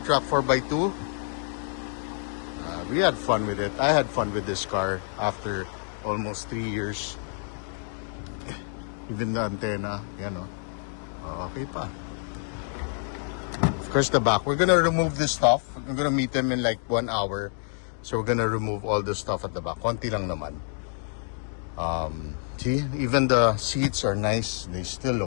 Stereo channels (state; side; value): silent; right; 56 dB below the other